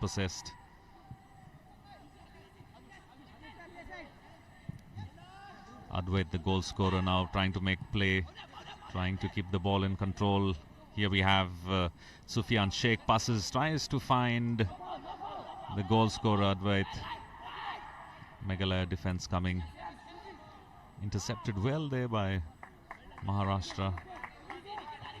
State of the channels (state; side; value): identical; both; correlation 1.00